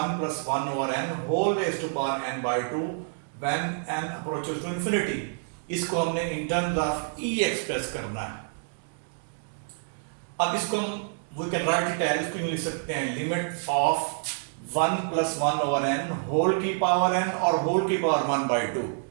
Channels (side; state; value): left; silent; digital silence